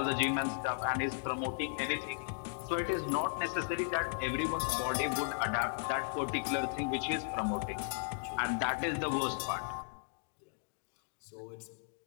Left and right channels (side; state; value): right; silent; digital silence